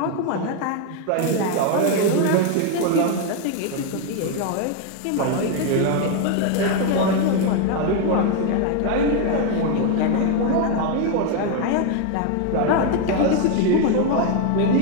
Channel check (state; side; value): different; both; correlation 0.01